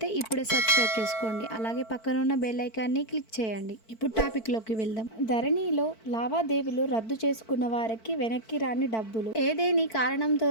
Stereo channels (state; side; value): late; right; 4.5 ms